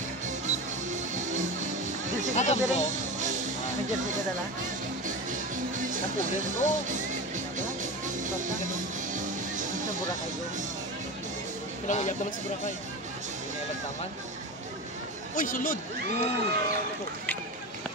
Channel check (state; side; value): normal; both; correlation 0.25